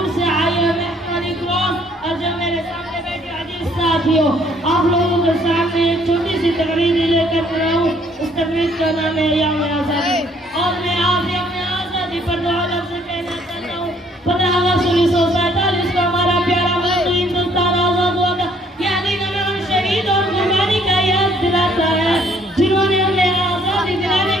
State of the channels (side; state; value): both; normal; correlation 0.63